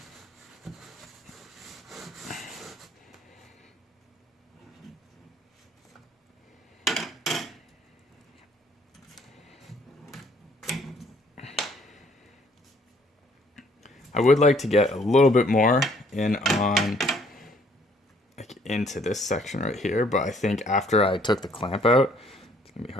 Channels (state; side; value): normal; both; correlation 0.63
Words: I would like to get a little bit more in on into this section right here, but I think after I took the clamp out, it's gonna be